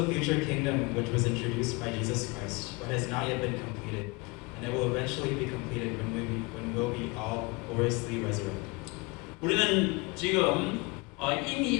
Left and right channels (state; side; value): quieter; right; 26.5 dB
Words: future kingdom which was introduced by Jesus Christ, but has not yet been completed, and it will eventually be completed when we'll be all gloriously resurrected. 우리는 지금